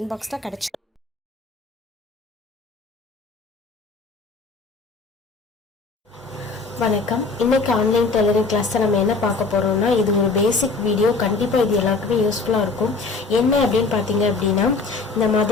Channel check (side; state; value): right; quieter; 3.9 dB